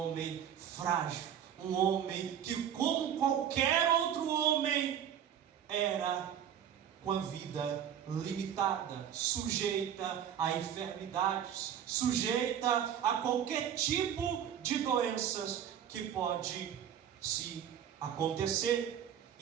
frágil, um homem que, como qualquer outro homem, era com a vida limitada, sujeita a enfermidades, sujeita a qualquer tipo de doenças que pode se acontecer.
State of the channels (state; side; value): quieter; left; 9.3 dB